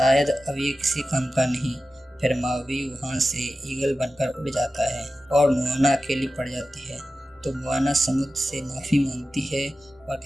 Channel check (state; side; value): normal; both; correlation 0.94